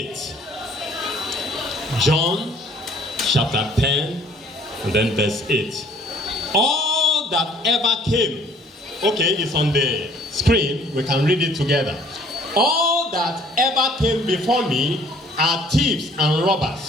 John chapter 10 and then verse 8. All that ever came, okay, it's on the screen, we can read it together. All that ever came before me are thieves and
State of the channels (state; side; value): normal; both; correlation 0.57